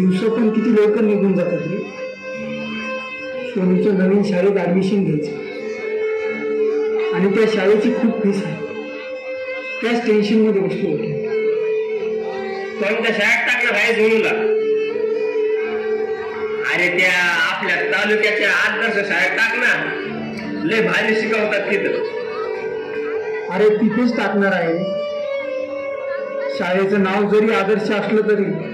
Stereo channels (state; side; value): identical; both; correlation 1.00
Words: पण किती लवकर निघून जातात रे. सोनूचं नवीन शाळेत ऍडमिशन घ्यायचं आणि त्या शाळेची खूप फीस आहे. त्याच टेन्शन मध्ये बसलो होतो. कोणत्या शाळेत टाकलं भाई सोनूला? अरे त्या आपल्या तालुक्याच्या आदर्श शाळेत टाक ना. लय भारी शिकवतात तिथं. अरे तिथेच टाकणार आहे. शाळेचं नाव जरी आदर्श असलं तरी